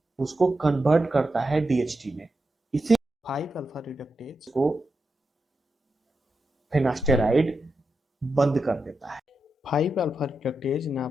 उसको कन्वर्ट करता है डीएचटी में, इसी 5 अल्फा रिडक्टेज को फिनास्टेराइड बंद कर देता है। 5 अल्फा रिडक्टेज ना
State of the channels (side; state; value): both; normal; correlation 0.87